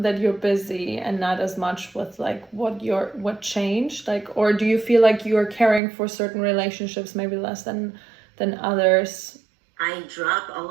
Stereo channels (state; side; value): drops out; left; at 5.8 s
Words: you're busy, and not as much with like what changed, like, or do you feel like you're caring for certain relationships maybe less than others? I drop all